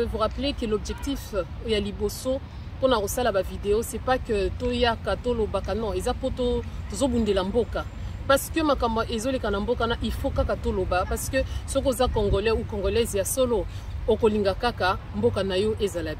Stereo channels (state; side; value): identical; both; correlation 1.00